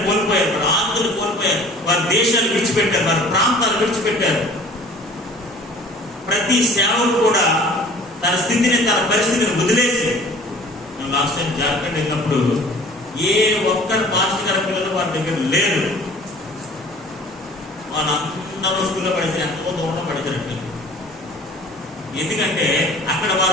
కోల్పోయారు, వారి ఆస్తులు కోల్పోయారు, వారి దేశాలు విడిచిపెట్టారు, వారి ప్రాంతాలు విడిచిపెట్టారు. ప్రతి సేవకుడు కూడా తన స్థితిని, తన పరిస్థితిని వదిలేసి, లాస్ట్ టైం జార్ఖండ్ వెళ్ళినప్పుడు ఏ ఒక్కరు మాస్టర్ గారి పిల్లలు వారి దగ్గర లేరు. వాళ్ళందరూ స్కూల్లో పడితే ఎంతో దూరంలో పడిచారండి. ఎందుకంటే అక్కడ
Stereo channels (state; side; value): normal; both; correlation 0.48